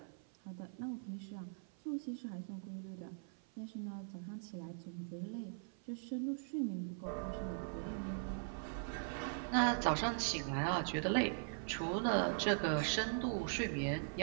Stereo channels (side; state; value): left; silent; 50 dB below the other